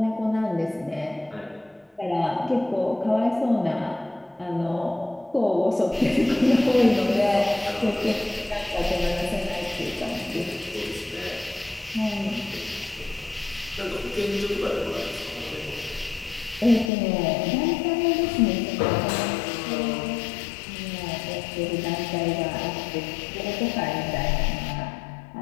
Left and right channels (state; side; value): drops out; right; at 16.9 s